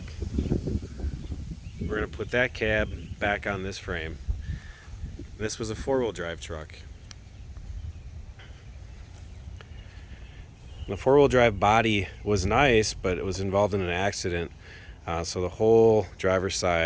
We're gonna put that cab back on this frame. This was a four-wheel drive truck. The four-wheel drive body was nice, but it was involved in an accident. So the whole driver's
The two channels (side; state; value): both; identical; correlation 1.00